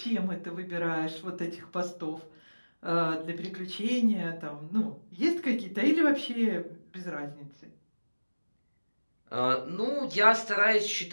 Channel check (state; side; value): inverted; both; correlation -1.00